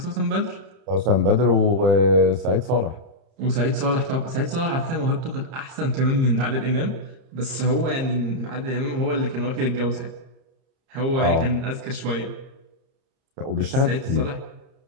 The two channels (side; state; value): left; late; 30 ms